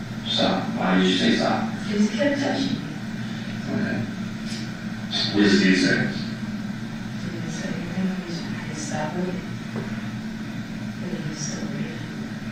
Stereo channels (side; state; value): both; identical; correlation 1.00